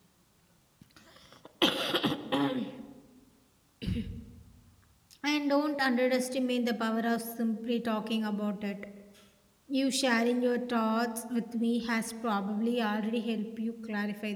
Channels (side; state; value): both; identical; correlation 1.00